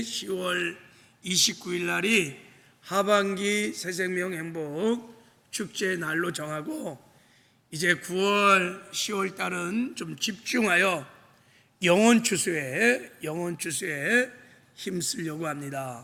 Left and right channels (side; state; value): both; identical; correlation 1.00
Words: 10월 29일 날이 하반기 새생명 행복축제 날로 정하고, 이제 9월 10월 달은 좀 집중하여 영혼 추수에 힘쓰려고 합니다.